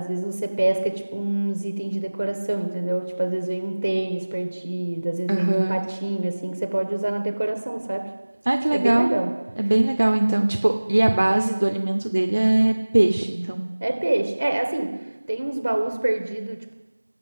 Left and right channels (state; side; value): inverted; both; correlation -1.00